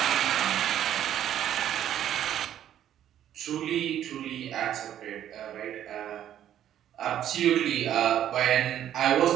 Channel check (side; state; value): left; quieter; 11.0 dB